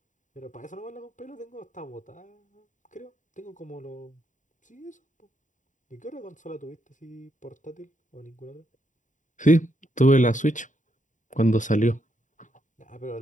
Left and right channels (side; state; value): right; late; 0.37 ms